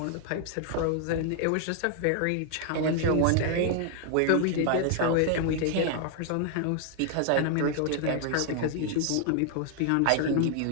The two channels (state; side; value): different; both; correlation 0.00